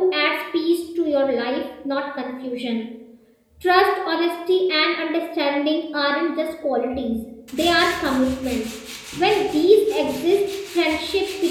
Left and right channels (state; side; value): identical; both; correlation 1.00